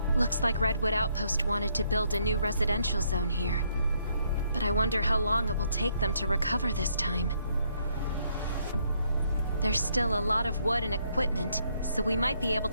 Looks like Redwood Outpost wanted to build a new residential zone here. But I wonder how long it will take them to recover this time. There's still a lot of wood and equipment, so we might be able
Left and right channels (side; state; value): both; inverted; correlation -0.72